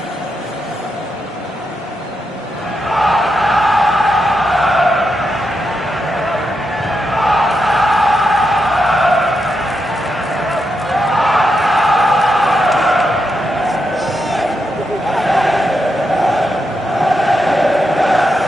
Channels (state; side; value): normal; both; correlation 0.84